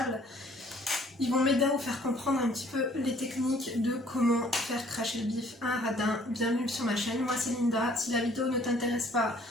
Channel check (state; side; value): normal; both; correlation 0.58